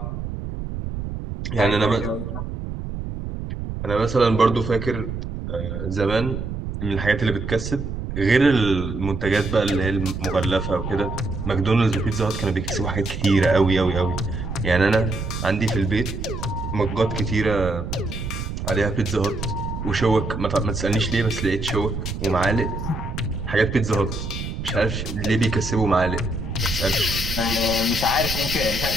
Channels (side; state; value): right; noise; rumble, 6 dB below the sound